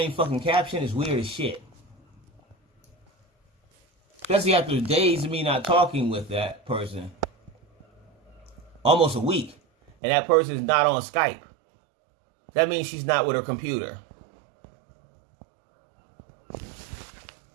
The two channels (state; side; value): drops out; left; at 9.9 s